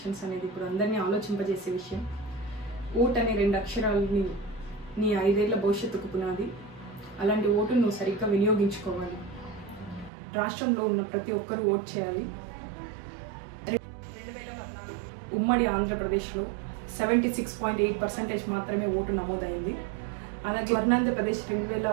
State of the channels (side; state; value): left; drops out; at 10.1 s